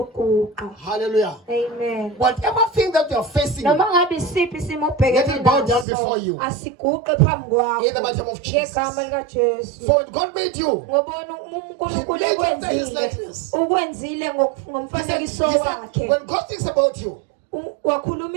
Hallelujah. Amen. Whatever thing that you are facing, let it bow down before you. In the mighty name of Jesus. For when God made you, He made you after His likeness. When God thinks about you, when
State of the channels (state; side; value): drops out; left; at 5.9 s